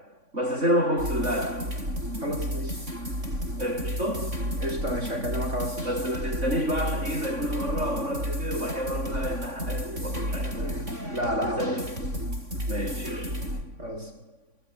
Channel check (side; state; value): left; late; 3.5 ms